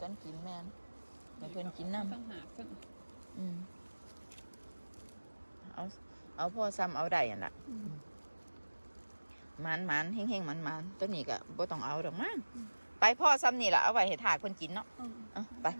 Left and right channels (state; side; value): inverted; both; correlation -1.00